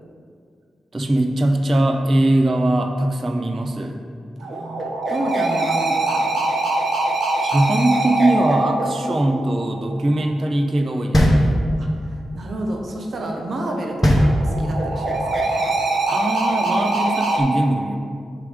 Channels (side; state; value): both; normal; correlation 0.89